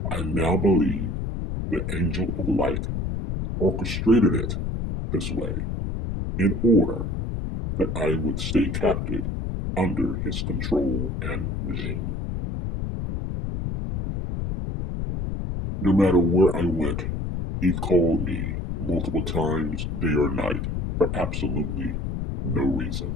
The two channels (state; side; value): noise; left; rumble, 3 dB below the sound